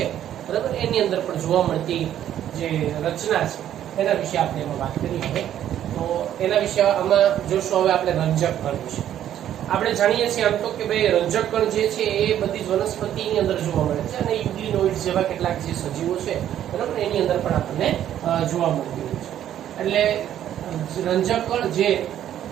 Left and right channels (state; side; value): quieter; left; 11.0 dB